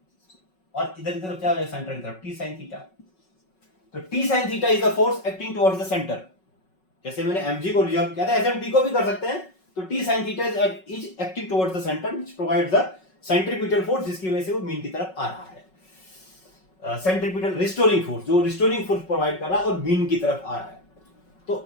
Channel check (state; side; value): late; right; 5.4 ms